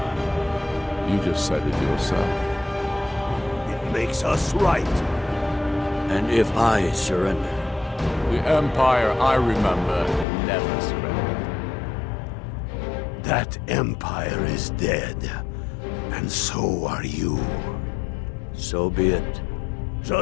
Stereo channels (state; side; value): drops out; right; at 10.2 s